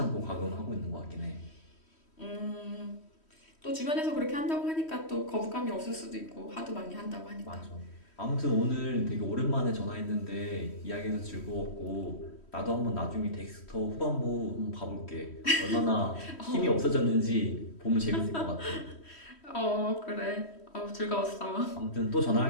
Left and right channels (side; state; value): right; late; 3.1 ms